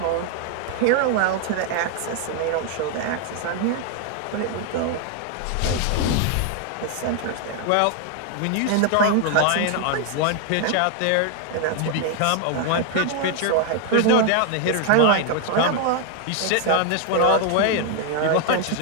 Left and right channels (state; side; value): different; both; correlation 0.00